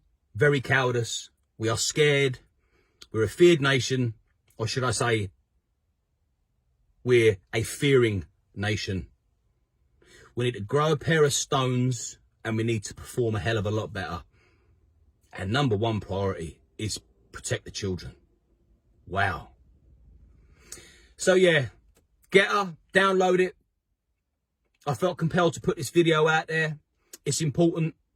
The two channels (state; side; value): identical; both; correlation 1.00